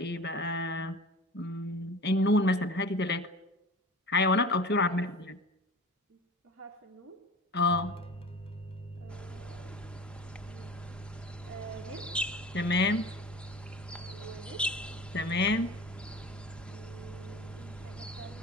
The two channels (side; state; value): both; normal; correlation 0.37